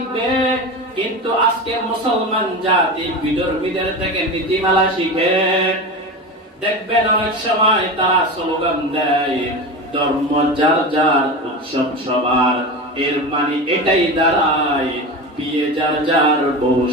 কিন্তু আজকে মুসলমান জাতি বিধর্মীদের থেকে নীতিমালা শিখে। দেখবেন অনেক সময় তারা স্লোগান দেয়, ধর্ম যার যার, উৎসব সবার। এর মানে এটাই দাঁড়ায় বিয়ে যার যার, বউ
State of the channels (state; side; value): normal; both; correlation 0.25